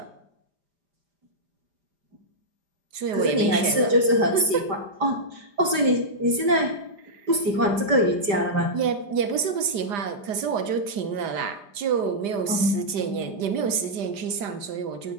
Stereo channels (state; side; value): late; left; 4.9 ms